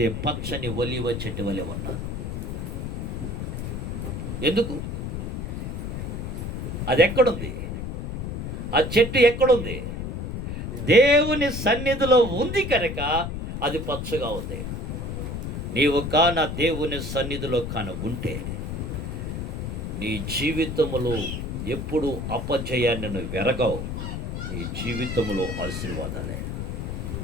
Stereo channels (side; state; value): left; noise; rumble, 4 dB below the sound